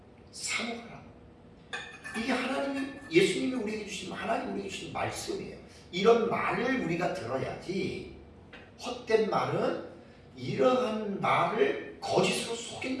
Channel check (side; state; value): both; identical; correlation 1.00